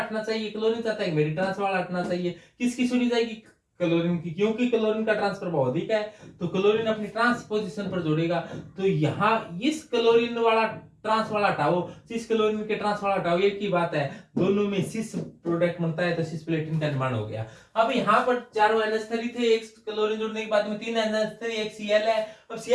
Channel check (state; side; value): identical; both; correlation 1.00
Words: चाहिए, क्लोरीन चाहता है मेरी ट्रांस वाला हटना चाहिए। किसकी सुनी जाएगी? क्लोरीन की, क्योंकि क्लोरीन का ट्रांस प्रभाव अधिक है तो क्लोरीन अपनी ट्रांस पोजीशन पर जोड़ेगा। तो यहाँ इस क्लोरीन वाला ट्रांस वाला हटाओ, सिस क्लोरीन के ट्रांस वाला हटाओ, एक ही बात है, दोनों में सिस प्रोडक्ट बनता है तो सिस प्लेटिन का निर्माण हो गया। अब यहाँ पर चारों NH3 थे, एक क्लोरीन जुड़ने के बाद में 3 NH3, एक Cl है। अब